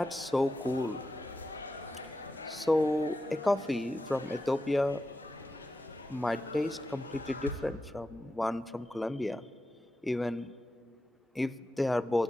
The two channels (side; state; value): both; normal; correlation 0.90